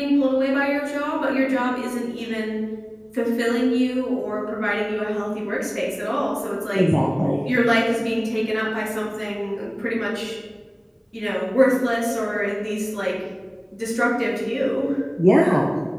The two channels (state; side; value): identical; both; correlation 1.00